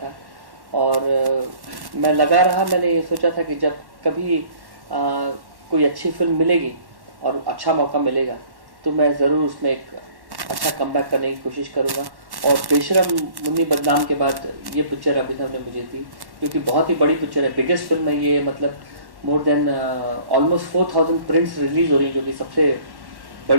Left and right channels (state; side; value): late; left; 1.1 ms